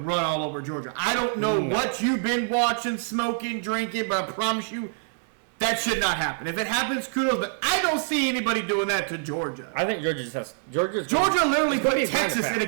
run all over Georgia. I don't know what you've been watching, smoking, drinking, but I promise you that should not happen. If it happens, kudos, but I don't see anybody doing that to Georgia. I think Georgia just has... Georgia literally put Texas in a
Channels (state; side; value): silent; left; digital silence